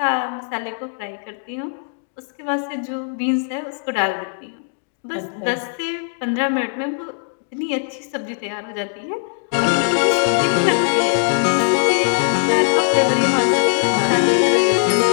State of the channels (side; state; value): right; silent; digital silence